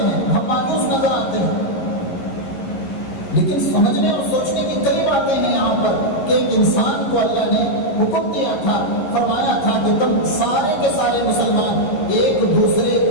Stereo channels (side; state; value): right; late; 11 ms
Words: ہیں، ہم مایوس نظر آتے ہیں. لیکن سمجھنے اور سوچنے کی کئی باتیں ہیں یہاں پر کہ ایک انسان کو اللہ نے حکم دیا تھا، فرمایا تھا کہ تم سارے کے سارے مسلمان ایک دوسرے